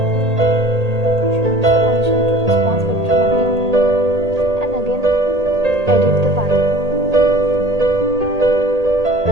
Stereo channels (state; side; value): late; left; 1.8 ms